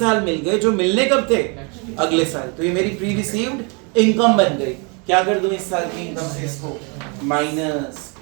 मिल गए, जो मिलने कब थे? अगले साल। तो ये मेरी प्री रिसीव्ड इनकम बन गई। क्या कर दूं इस साल की इनकम से? इसको माइनस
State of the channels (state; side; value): quieter; left; 33.2 dB